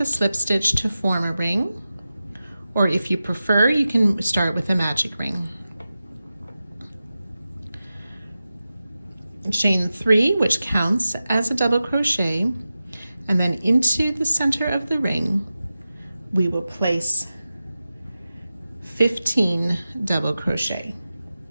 a slip stitch to form a ring, or if you prefer, you can start with a magic ring. Chain 3, which counts as a double crochet, and then into the center of the ring we will place 15 double crochet.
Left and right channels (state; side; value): inverted; both; correlation -0.94